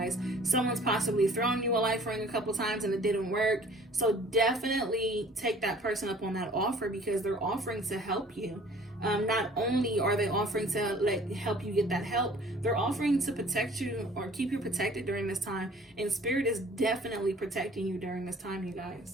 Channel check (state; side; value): normal; both; correlation 0.51